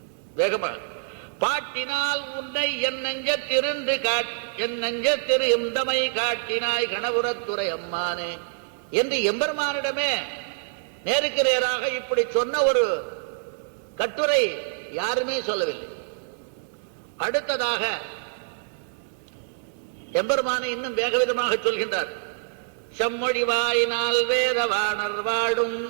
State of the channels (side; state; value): left; silent; digital silence